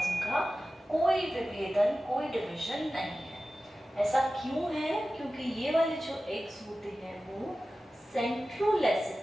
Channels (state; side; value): normal; both; correlation 0.95